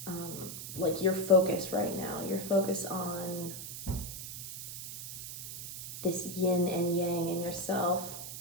like your focus right now. Your focus on this yin and yang in yourself.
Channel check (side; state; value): right; noise; hiss, 8 dB below the sound